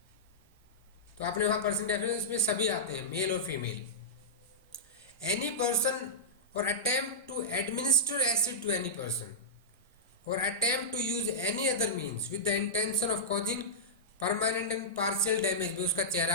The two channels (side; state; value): both; normal; correlation -0.15